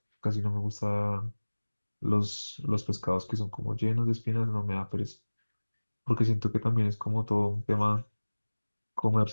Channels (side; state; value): both; inverted; correlation -1.00